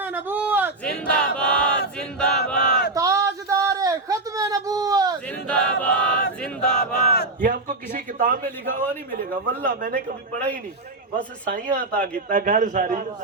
نبوت، زندہ باد زندہ باد تاجدار ختم نبوت، زندہ باد زندہ باد۔ یہ آپ کو کسی کتاب میں لکھا ہوا نہیں ملے گا، واللہ میں نے کبھی پڑھا ہی نہیں، بس سائیاں عطا کیتا گھر ساری،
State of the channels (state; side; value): quieter; left; 3.1 dB